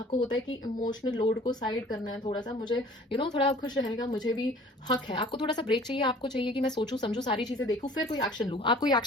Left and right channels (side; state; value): both; normal; correlation 0.50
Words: होता है कि इमोशनल लोड को साइड करना है थोड़ा सा, मुझे थोड़ा खुश रहने का मुझे भी हक है। आपको थोड़ा सा ब्रेक चाहिए, आपको चाहिए कि मैं सोचूं समझूं सारी चीजें देखूं फिर कोई एक्शन लूं। आप कोई